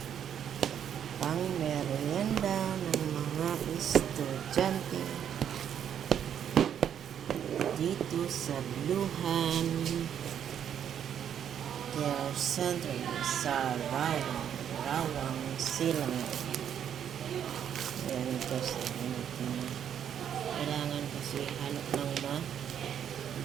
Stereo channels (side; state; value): left; quieter; 9.1 dB